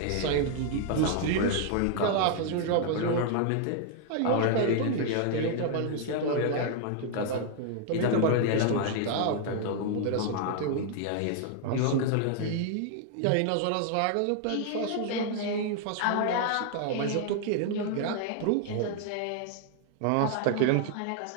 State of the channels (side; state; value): both; different; correlation 0.00